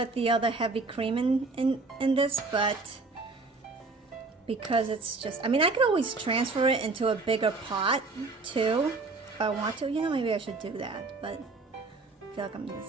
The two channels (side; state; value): left; quieter; 3.7 dB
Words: the other heavy cream in this, but because it's just, I mean, I could always transfer it into a bigger pot too if I want to. You know, maybe I should do that, but I feel like I'm